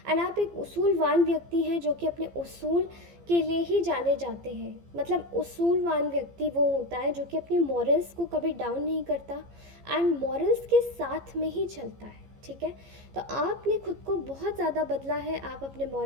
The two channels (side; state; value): left; late; 15 ms